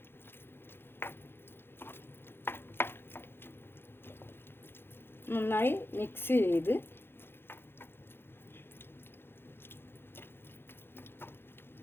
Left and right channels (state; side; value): late; right; 0.11 ms